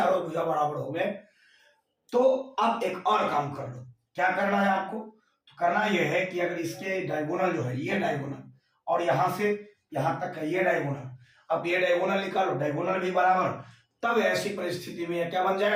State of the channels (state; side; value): identical; both; correlation 1.00